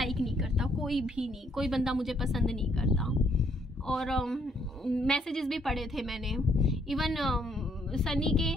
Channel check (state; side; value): normal; both; correlation 0.69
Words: नहीं करता, कोई भी नहीं, कोई बंदा मुझे पसंद नहीं करता। और मैसेजेस भी पढ़े थे मैंने। इवन सनी के